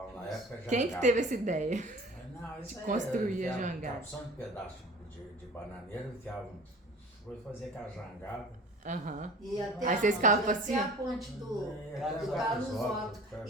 na época jangada. Quem que teve essa ideia? Não, isso de construir a era jangada? Só um pedaço de bananeira, foi fazer aquela jangada. E até Aí vocês ficavam assim? a ponte do Carlos Otto.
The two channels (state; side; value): normal; both; correlation 0.43